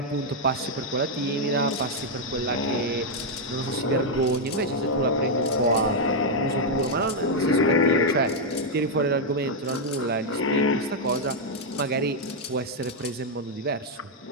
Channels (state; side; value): normal; both; correlation -0.02